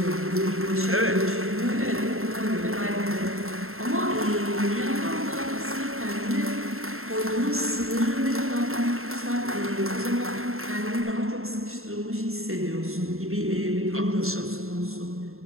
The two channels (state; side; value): late; left; 0.62 ms